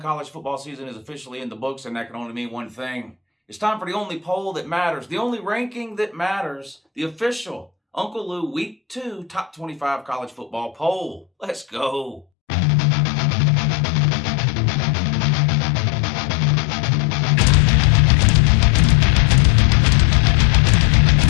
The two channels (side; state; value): right; drops out; at 12.2 s